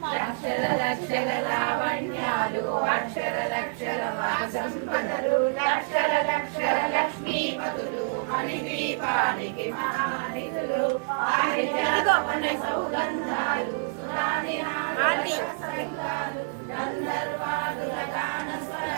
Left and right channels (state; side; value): silent; left; digital silence